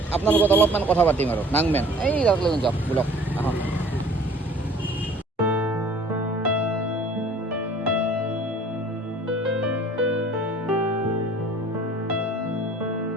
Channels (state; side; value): normal; both; correlation 0.50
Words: আপোনাৰ লগত অলপমান কথা পাতিম আৰু নাংমেন এই তাক লৈ যাওক, বলক আহক।